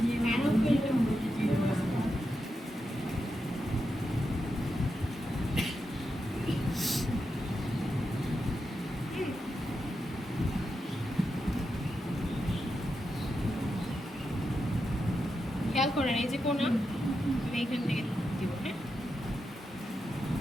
খেয়াল করেন এই যে কোনা, আমি এখান থেকে দিব। হ্যাঁ,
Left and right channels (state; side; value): normal; both; correlation 0.87